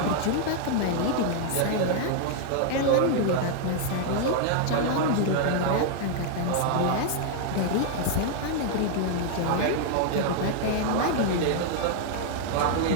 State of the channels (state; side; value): different; both; correlation 0.00